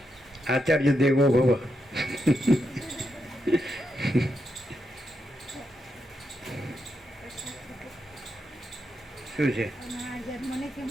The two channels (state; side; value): normal; both; correlation 0.84